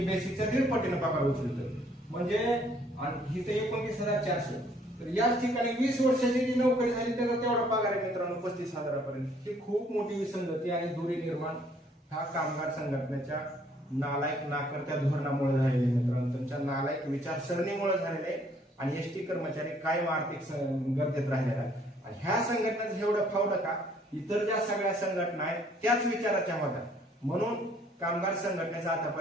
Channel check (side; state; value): both; normal; correlation 0.62